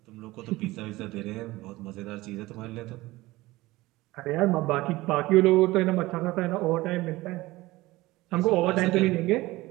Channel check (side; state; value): left; quieter; 19.3 dB